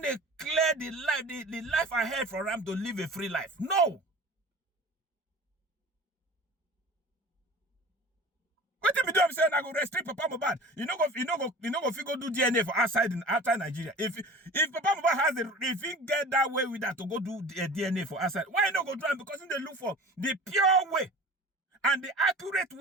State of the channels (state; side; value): normal; both; correlation 0.40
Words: clear the life ahead for him to live a free life. No. What if you do? I'm saying I go restrict Papa Mohbad. You know go figure do DNA for outside Nigeria. If Papa Mohbad has if he get that way with that to go do DNA for outside, why not go do it? Because they look for the pure way and the accurate